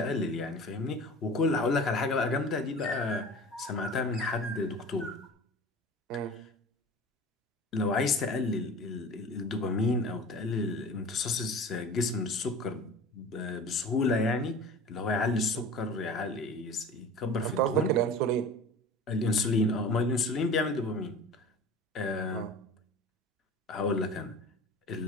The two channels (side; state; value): both; normal; correlation 0.38